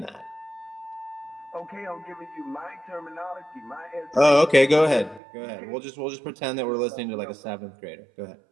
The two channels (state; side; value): drops out; left; at 5.2 s